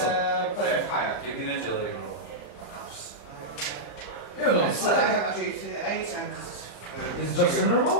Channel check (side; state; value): right; late; 34 ms